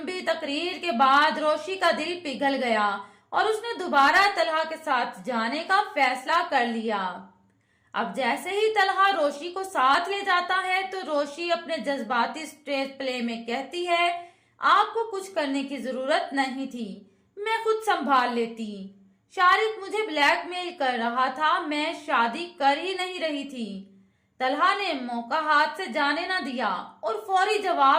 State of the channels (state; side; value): identical; both; correlation 1.00